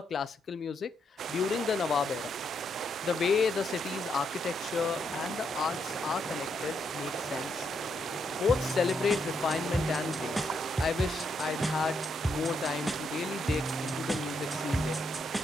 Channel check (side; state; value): both; normal; correlation 0.78